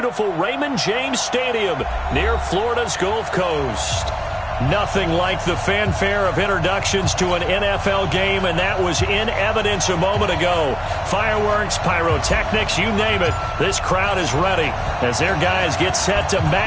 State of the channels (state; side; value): identical; both; correlation 1.00